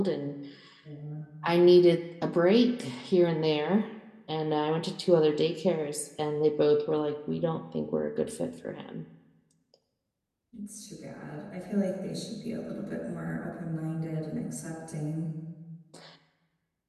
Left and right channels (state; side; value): identical; both; correlation 1.00